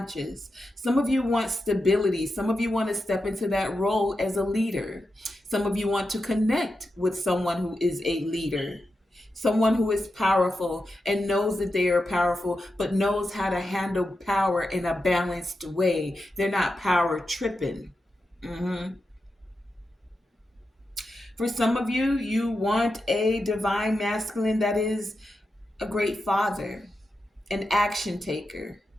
Some of you want stability. Some of you want to step into that role as a leader. Some of you want to connect with someone who is a leader. Someone who is powerful and knows that they are powerful, but knows how to handle power in a balanced way. They're not power tripping. Mhm. For some of you, you want a divine masculine that is a great father, an action taker,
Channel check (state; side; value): normal; both; correlation 0.89